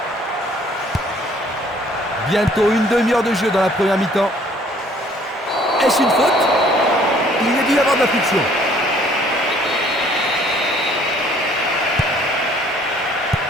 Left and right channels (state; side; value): normal; both; correlation 0.58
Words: Bientôt une demi-heure de jeu dans la première mi-temps. Est-ce une faute? Il y a dû y avoir de la friction.